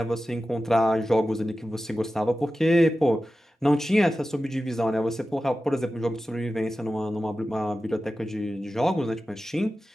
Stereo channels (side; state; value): both; normal; correlation 0.94